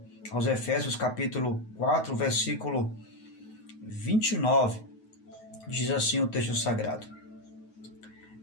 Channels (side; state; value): right; late; 9.3 ms